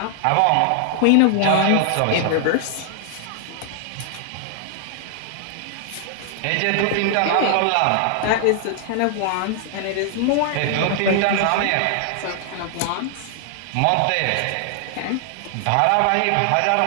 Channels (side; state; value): both; different; correlation 0.00